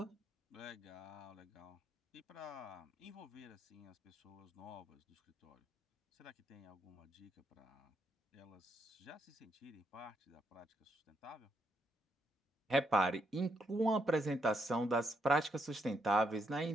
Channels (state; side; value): normal; both; correlation 0.78